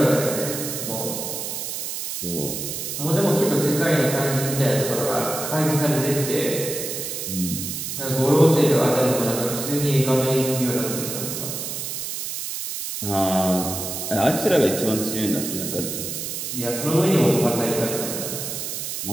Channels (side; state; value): right; noise; hiss, 5 dB below the sound